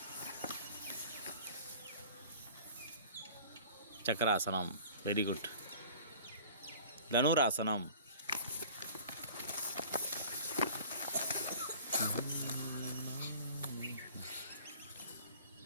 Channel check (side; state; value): both; inverted; correlation -0.45